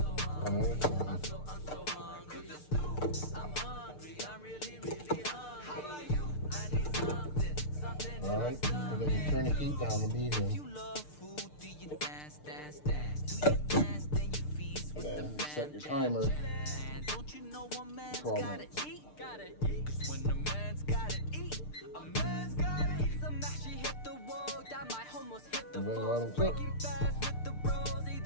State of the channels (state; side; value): late; right; 6.7 ms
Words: One at a time. I'm so hungry. The stew. I'm hungry. I'm really hungry. How about you? I need something. Alright, and then you turn the heat down to medium. You love food, do you dance? Do you dance, then you feast with And the then set your timer. And don't you know a man's 12 gotta minutes. eat? Cause when a man's gotta eat, a man's gotta eat some mash. She hit the wall, that might almost hit the And then floor. let them cook. Breaking fast with the bros, eat